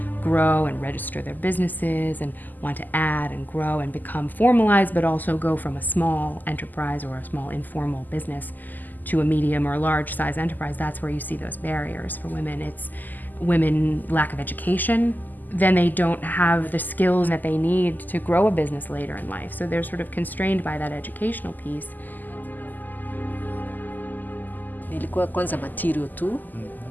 grow and register their businesses and want to add and grow and become formalized, but also go from a small enterprise or a small informal business to a medium or large size enterprise, that's where you see those barriers for women. It's women lack of education, then they don't have the skills that they need to grow a business later in life. So they're sort of constrained by that educational piece. Nilikuwa kwanza material tu.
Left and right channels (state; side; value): late; right; 0.085 ms